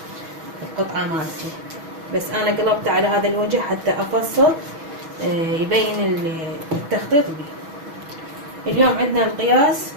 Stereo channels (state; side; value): late; left; 6.2 ms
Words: القطعة مالتي. بس انا قلبت على هذا الوجه حتى افصل يبين التخطيط بيه. اليوم عندنا القياس